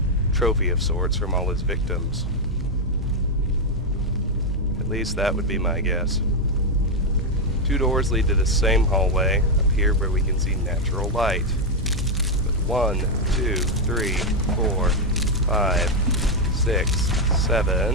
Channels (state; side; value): normal; both; correlation 0.02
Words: trophy of sorts from all his victims. At least that would be my guess. 2 doors lead to the same hallway up here where we can see natural light. With 1, 2, 3, 4, 5, 6,